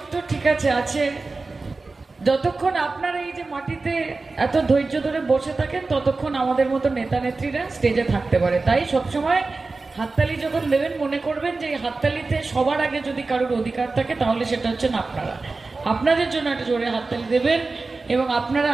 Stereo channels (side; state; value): left; quieter; 3.7 dB